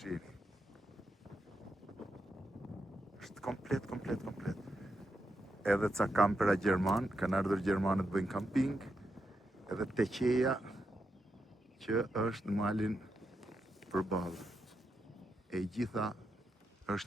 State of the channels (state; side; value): normal; both; correlation 0.84